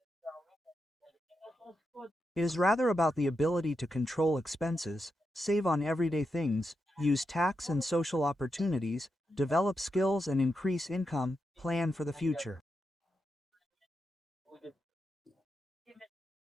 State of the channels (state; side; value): normal; both; correlation 0.86